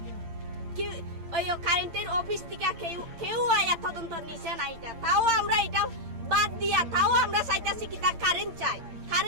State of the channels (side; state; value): left; late; 8.7 ms